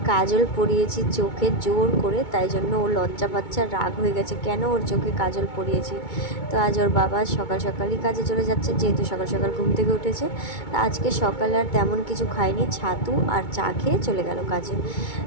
কাজল পরিয়েছি চোখে জোর করে, তাই জন্য ও লজ্জা পাচ্ছে, রাগ হয়ে গেছে কেন ওর চোখে কাজল পরিয়েছি। তো আজ ওর বাবা সকাল সকালই কাজে চলে যাচ্ছে, যেহেতু সকাল সকাল ঘুম থেকে উঠেছে। আজকে সকালে আর তেমন কিছু খাইনি, ছাতু আর চা খেয়ে চলে গেল কাজে,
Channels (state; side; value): late; right; 2.2 ms